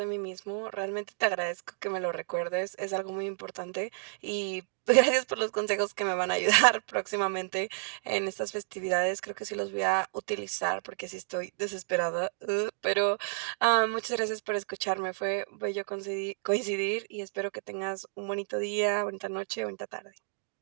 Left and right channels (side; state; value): left; silent; digital silence